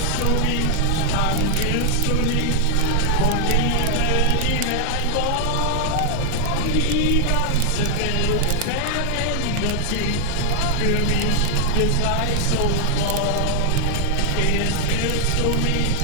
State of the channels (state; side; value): different; both; correlation 0.00